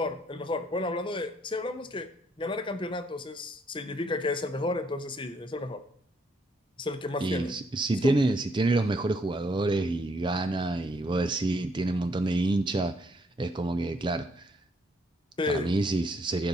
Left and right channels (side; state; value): both; normal; correlation 0.70